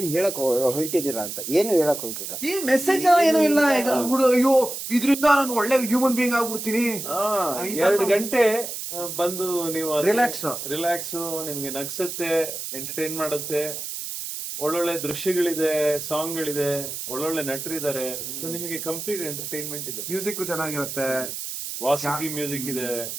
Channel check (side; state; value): right; noise; hiss, 6 dB below the sound